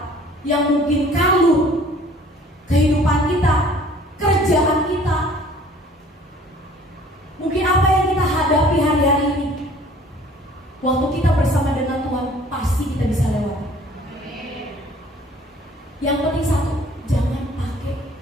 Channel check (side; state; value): both; normal; correlation 0.53